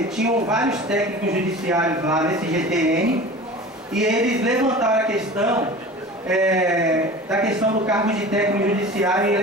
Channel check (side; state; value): both; normal; correlation 0.37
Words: tinham vários técnicos judiciários lá nesse GTN, e eles levantaram a questão da questão do cargo de técnico judiciário e